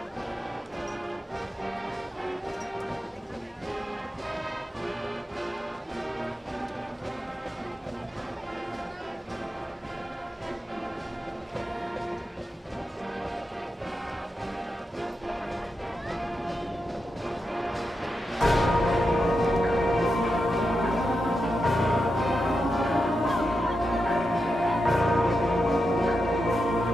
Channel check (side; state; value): both; normal; correlation 0.87